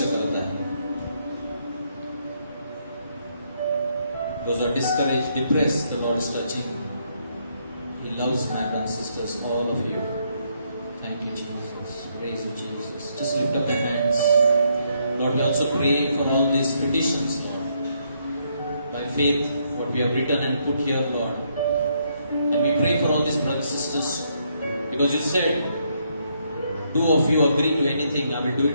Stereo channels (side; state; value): both; inverted; correlation -0.74